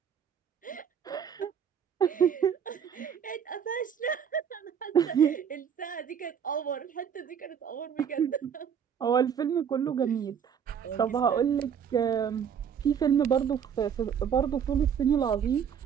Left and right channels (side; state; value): left; quieter; 7.9 dB